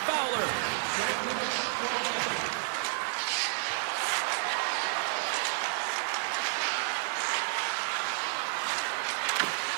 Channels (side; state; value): left; silent; 57 dB below the other